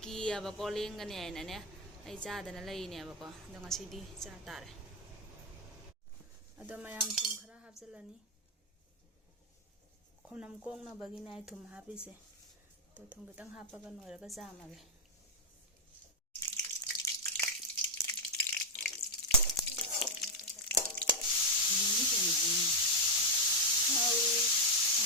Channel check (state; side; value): normal; both; correlation 0.00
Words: ꯀꯤꯌꯦꯕꯀꯣ ꯂꯦꯡꯒꯅꯤ ꯍꯥꯏꯅꯅꯦ ꯑꯩ ꯆꯥꯗꯅ ꯂꯩꯅꯦꯕꯀꯣ ꯑꯗꯣ ꯉꯁꯤꯗꯤ ꯆꯥ ꯇꯥꯔꯦ ꯑꯗꯣ ꯃꯌꯥꯝ ꯊꯨꯝ ꯈꯔ ꯍꯥꯞꯆꯤꯜꯂꯅꯤ ꯈꯣꯝꯅꯝ ꯀꯣꯡꯅꯕꯒꯤꯅꯦ ꯑꯩ ꯊꯨꯝ ꯍꯥꯞꯄꯤꯁꯦ ꯇꯣ ꯊꯨꯝ ꯈꯤꯇꯪ ꯍꯥꯞꯄꯒ ꯅꯣꯏꯔꯒ ꯆꯥꯝꯃꯒꯦ